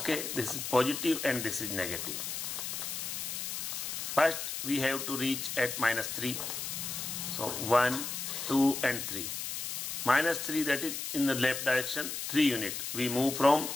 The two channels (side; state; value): left; noise; hiss, 4 dB below the sound